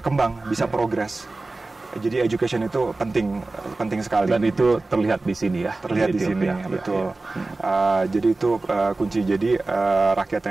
bisa progres. Jadi education itu penting sekali. Dan itu terlihat di sini ya. Terlihat di sini, betul. Jadi itu kunci. Jadi rakyat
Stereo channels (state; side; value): quieter; left; 3.2 dB